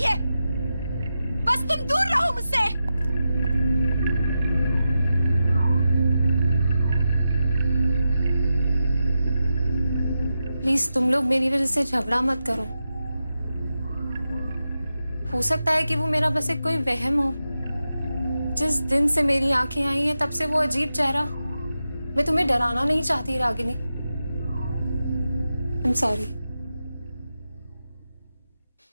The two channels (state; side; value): inverted; both; correlation -0.90